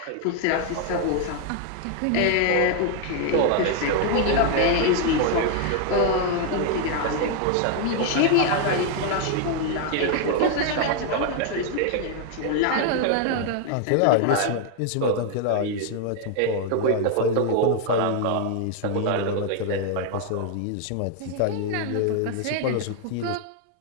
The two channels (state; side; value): different; both; correlation 0.00